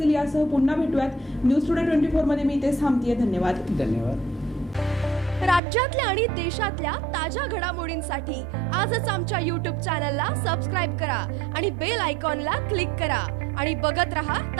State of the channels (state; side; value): drops out; left; at 5.6 s